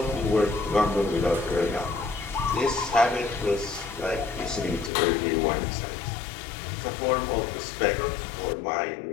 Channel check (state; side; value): drops out; right; at 4.9 s